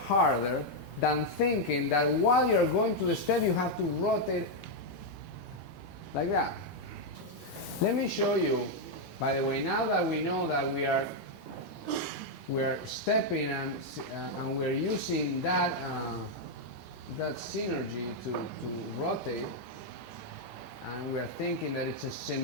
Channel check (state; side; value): normal; both; correlation 0.00